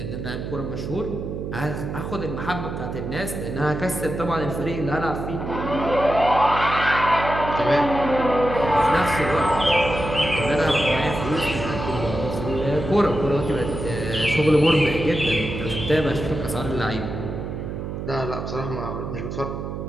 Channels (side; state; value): right; noise; hum, 6 dB below the sound